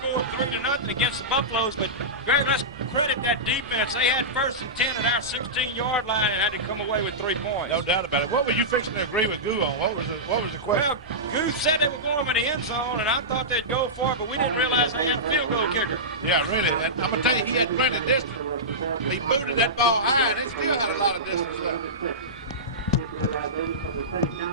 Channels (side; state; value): both; normal; correlation -0.15